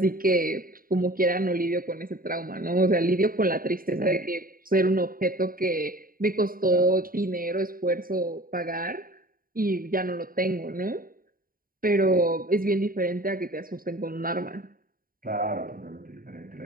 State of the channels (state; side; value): late; left; 0.41 ms